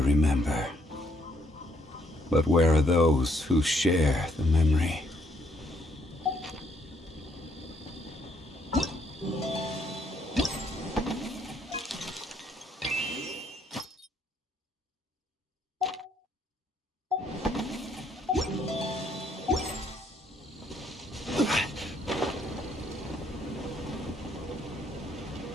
But where are those who share the memory?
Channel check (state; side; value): normal; both; correlation 0.69